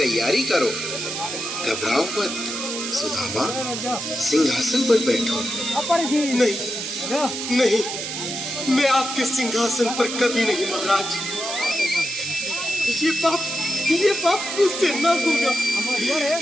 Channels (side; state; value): right; noise; hiss, 5 dB below the sound